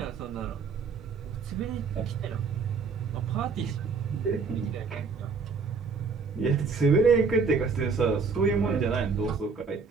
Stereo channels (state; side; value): quieter; left; 4.9 dB